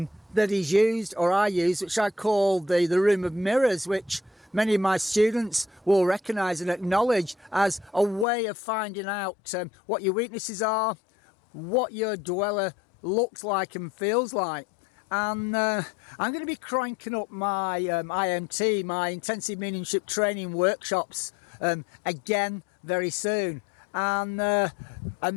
is used, or I use, which I call the room of mirrors, which many of my students will recognize and acknowledge as a way of finding out what your weaknesses are, what your dweller looks like and feels like. And I'm going to be cranking up my IMT, my intensive mediumship training workshops, again very soon. And a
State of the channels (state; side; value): drops out; right; at 8.2 s